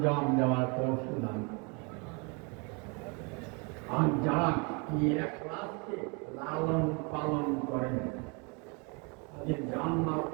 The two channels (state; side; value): quieter; left; 32.7 dB